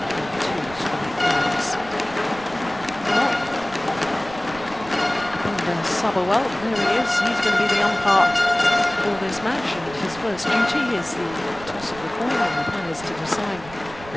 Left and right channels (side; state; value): right; noise; rumble, 17 dB below the sound